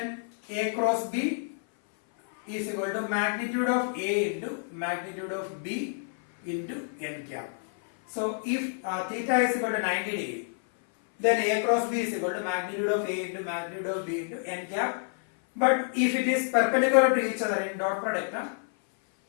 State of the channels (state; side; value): silent; right; 57 dB below the other